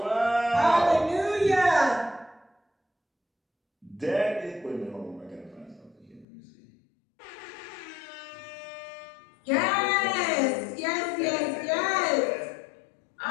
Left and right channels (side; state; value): right; drops out; at 6.2 s